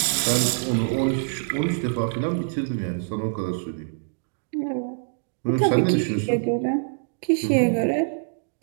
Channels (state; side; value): silent; left; digital silence